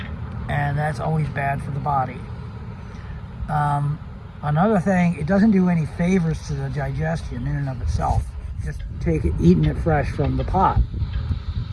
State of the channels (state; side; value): identical; both; correlation 1.00